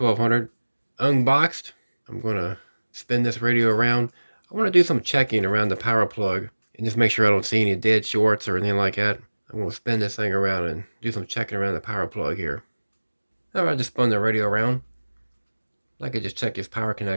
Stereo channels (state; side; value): inverted; both; correlation -1.00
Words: unboxed. I'm going to spin this radio around. I want to do some checking around the power plug and just make sure I don't see any dead shorts or anything like that. I'm going to spin this thing around and do some checking around the power plug here. Alright, just spun the radio around. I could just check this power